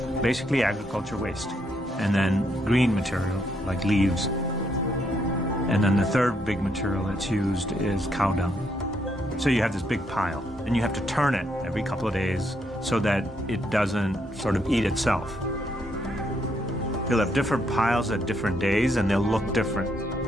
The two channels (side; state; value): both; normal; correlation 0.75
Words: basically agriculture waste, and then green material like leaves. And then the third big material that's used is cow dung. So you have this big pile, and you have to turn it every couple of days so that it doesn't sort of eat itself. You'll have different piles at different days, and they'll look different.